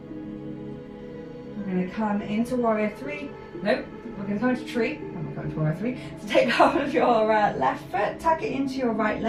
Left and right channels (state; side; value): identical; both; correlation 1.00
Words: We're going to come into warrior three. Nope, we're going to come into tree. I'm not going to warrior three. So take hold of your left foot, tuck it into your right